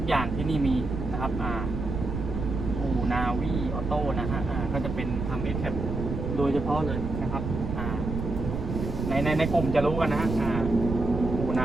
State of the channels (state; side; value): noise; right; rumble, 4 dB below the sound